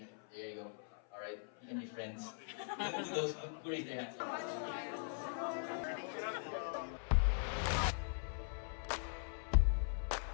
there you go. Alright, you can be friends. To those who raise their hands.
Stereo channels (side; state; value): right; silent; 50 dB below the other